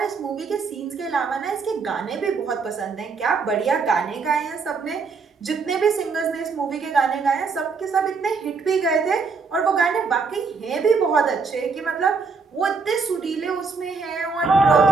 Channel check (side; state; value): left; quieter; 4.8 dB